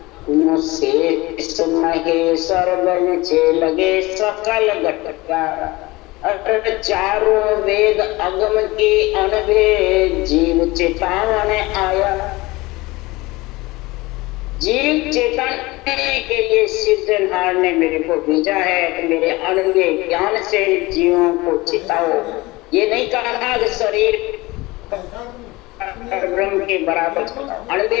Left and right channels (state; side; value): quieter; right; 21.5 dB